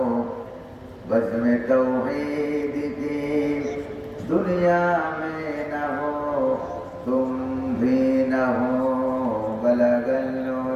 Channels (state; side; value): identical; both; correlation 1.00